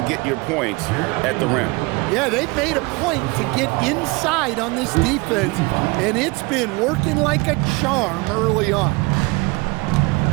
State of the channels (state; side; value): quieter; left; 25.9 dB